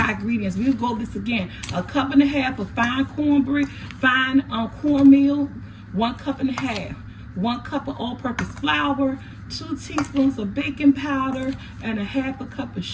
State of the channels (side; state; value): both; identical; correlation 1.00